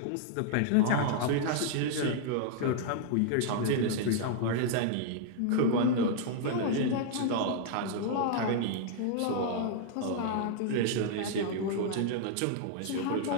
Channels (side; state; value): both; different; correlation -0.01